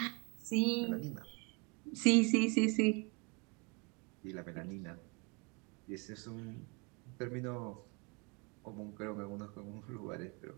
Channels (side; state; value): left; quieter; 31.0 dB